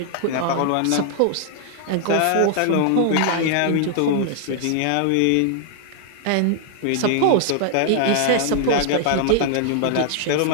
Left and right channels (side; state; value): both; different; correlation 0.00